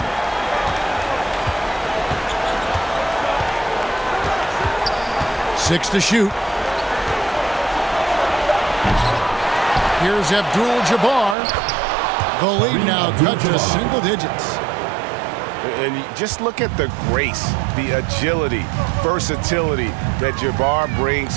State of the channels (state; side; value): drops out; left; at 11.4 s